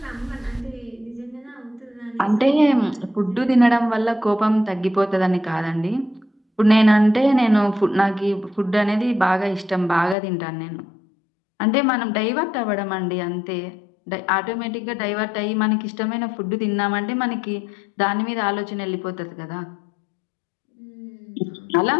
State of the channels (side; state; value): right; drops out; at 10.2 s